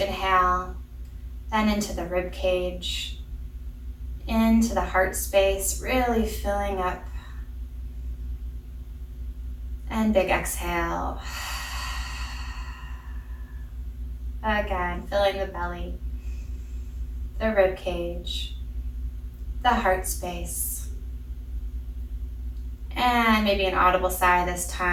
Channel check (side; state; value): both; identical; correlation 1.00